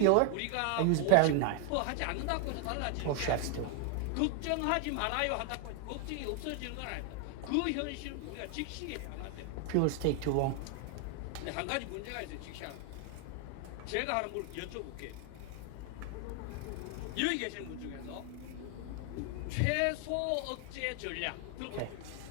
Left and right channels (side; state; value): both; different; correlation 0.00